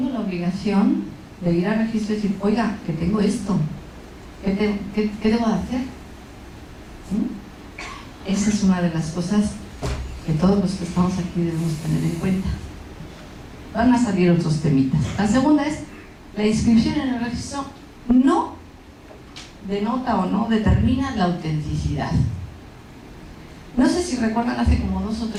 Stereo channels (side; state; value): both; identical; correlation 1.00